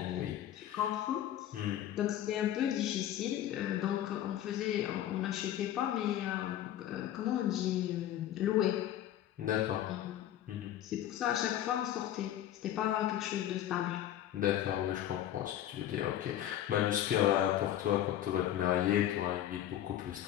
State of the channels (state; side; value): quieter; right; 11.9 dB